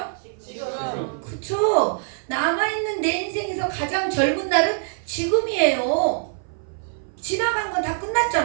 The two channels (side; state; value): left; silent; 58 dB below the other